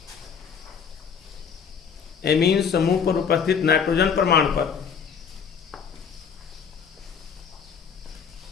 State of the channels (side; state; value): right; quieter; 6.8 dB